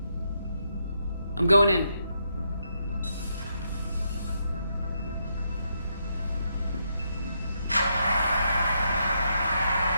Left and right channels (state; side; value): inverted; both; correlation -0.79